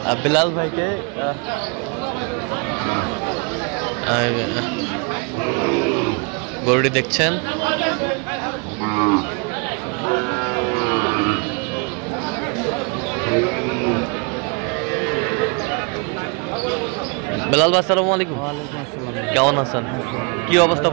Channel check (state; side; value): quieter; left; 34.1 dB